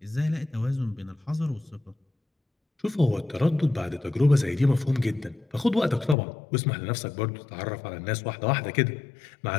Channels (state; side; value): drops out; right; at 6.2 s